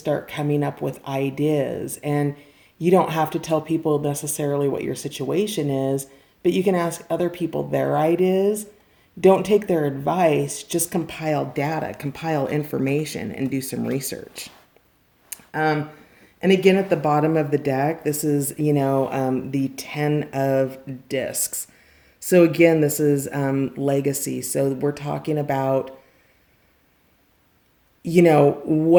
coming up with ideas. And you don't have to tell people necessarily what your situation is, but you can ask other people their ideas. Don't take their advice, just compile data, compile information, and do some research. And again, at the bottom of the deck, this is, the 10 of discs. So again, this is legacy. So we're talking about,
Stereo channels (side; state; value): both; identical; correlation 1.00